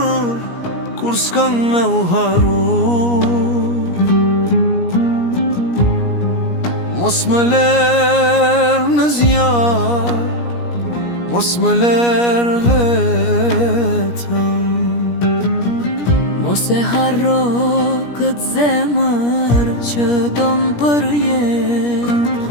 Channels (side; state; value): right; late; 17 ms